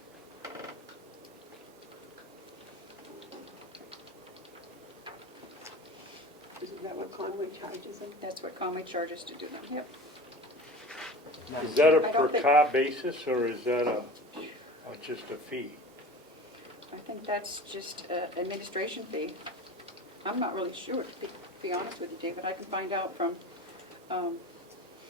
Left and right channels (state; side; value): normal; both; correlation 0.37